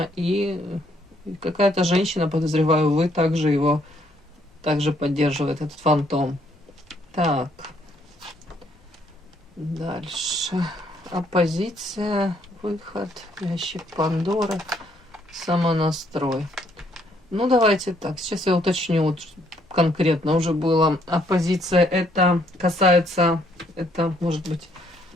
и какая-то женщина, подозреваю, вы также его также поддерживает этот фантом. Так. Дальше. Оппозиция, выход, ящик Пандоры, самонастрой. Ну, давайте так. Сейчас я уточню, вот конкретно уже было. Оппозиция, это касается, это может быть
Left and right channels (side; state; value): both; normal; correlation 0.69